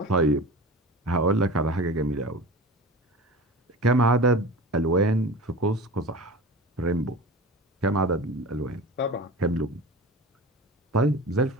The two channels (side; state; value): both; normal; correlation 0.33